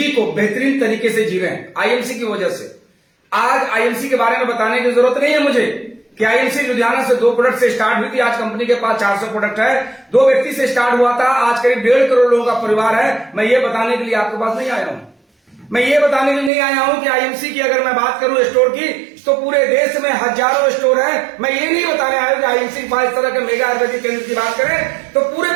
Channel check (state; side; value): drops out; left; at 16.5 s